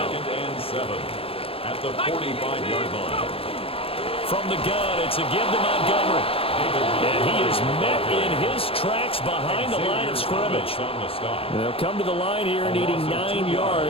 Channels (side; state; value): right; late; 0.27 ms